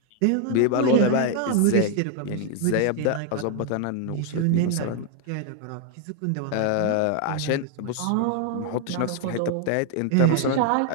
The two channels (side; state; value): both; different; correlation 0.00